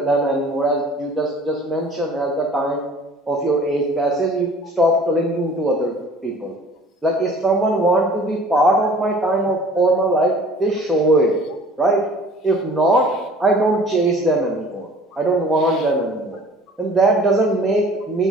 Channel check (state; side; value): normal; both; correlation 0.49